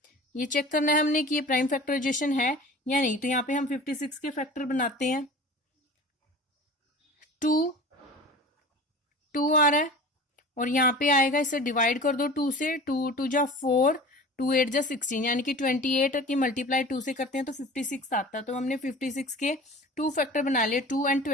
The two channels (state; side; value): normal; both; correlation 0.39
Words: ये चेक करना है हमने कि ये प्राइम फैक्टराइजेशन है या नहीं। तो यहाँ पे हम 56 के फैक्टर बनाते हैं, 2 आ रहा है, और यहाँ पे आएगा, इसे डिवाइड कर दो 2 से, 2 2 जा 4, 2 8 जा 16, यानी कि 28 की मल्टीप्लाई 2 से करते हैं तो 56 आता है। तो हमने 56 के 2 फैक्टर बना लिए, 2 और